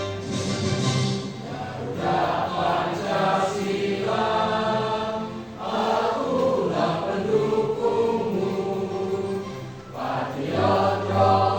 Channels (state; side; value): identical; both; correlation 1.00